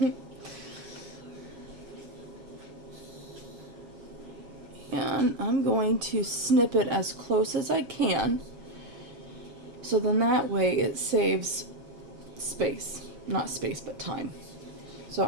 And I'm going to snip it as close as I can, so then that way it saves space. Not space, but time. So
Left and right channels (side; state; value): left; late; 7.3 ms